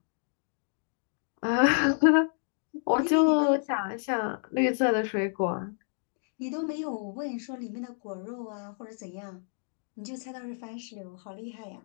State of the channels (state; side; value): silent; right; 58 dB below the other